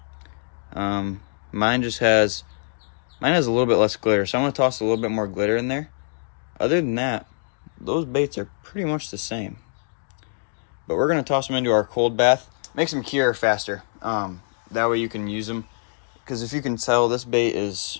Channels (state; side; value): silent; right; digital silence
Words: Mine has a little bit less glitter, so I'm gonna toss a little bit more glitter in there. Other than that, those baits are pretty much the same. But we're gonna toss them into our cold bath. Makes them cure faster. That way you can use them. Because if you can tell, this bait's